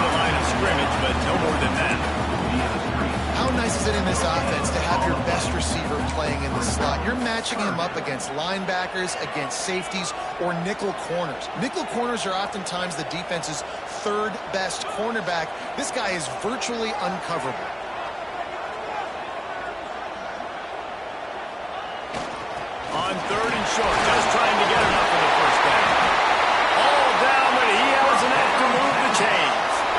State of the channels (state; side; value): identical; both; correlation 1.00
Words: line of scrimmage, but no more than that. How nice is it in this offense to have your best receiver playing in the slot? You're matching him up against linebackers, against safeties, or nickel corners. Nickel corners are oftentimes the defense's third best cornerback. This guy is virtually uncoverable. On third and short, just trying to get enough for the first down. All down, but he has enough to move the chains.